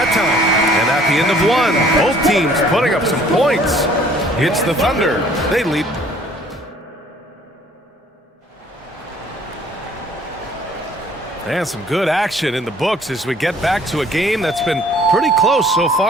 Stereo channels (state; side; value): normal; both; correlation 0.56